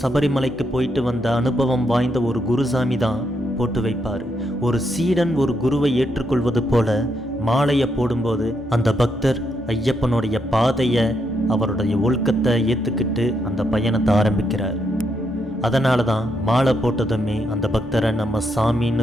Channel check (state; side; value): normal; both; correlation 0.79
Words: சபரிமலைக்கு போயிட்டு வந்த அனுபவம் வாய்ந்த ஒரு குருசாமி தான் போட்டு வைப்பார். ஒரு சீடன் ஒரு குருவை ஏற்றுக்கொள்வது போல மாலையை போடும்போது அந்த பக்தர் ஐயப்பனுடைய பாதையை, அவருடைய ஒழுக்கத்தை ஏற்றுக்கிட்டு அந்த பயணத்தை ஆரம்பிக்கிறார். அதனால தான் மாலை போட்டதுமே அந்த பக்தரை நம்ம